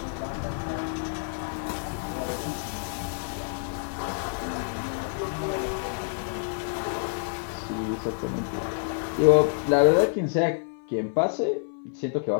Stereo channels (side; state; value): right; silent; 60 dB below the other